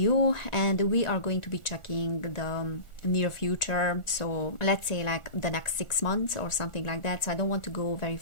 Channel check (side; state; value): right; late; 1.4 ms